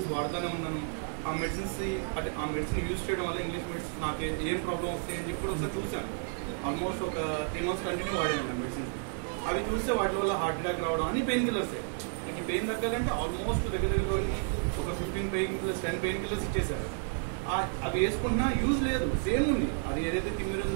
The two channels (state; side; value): silent; left; 57 dB below the other